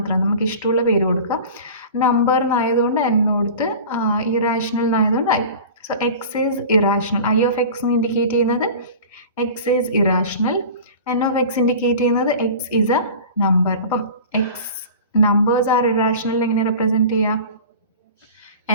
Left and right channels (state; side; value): inverted; both; correlation -0.37